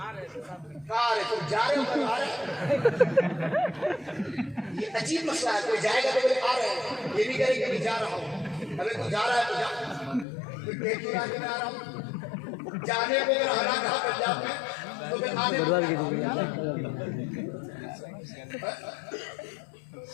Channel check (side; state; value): right; drops out; at 10.2 s